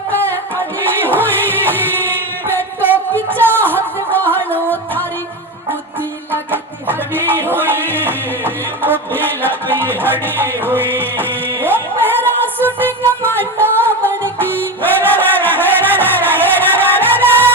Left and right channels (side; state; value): both; normal; correlation 0.21